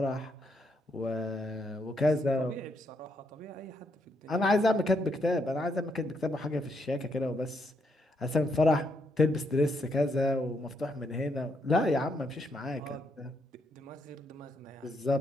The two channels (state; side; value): normal; both; correlation 0.77